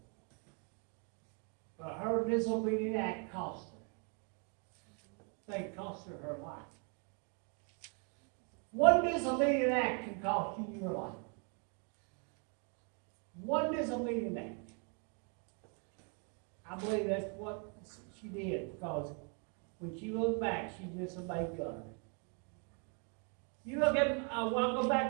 But her disobedient act cost her. They cost her her life. One disobedient act can cost you your life. One disobedient act. I believe that's what she did, because when she looked back, she disobeyed God. You look at, I'll go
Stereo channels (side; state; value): left; quieter; 38.7 dB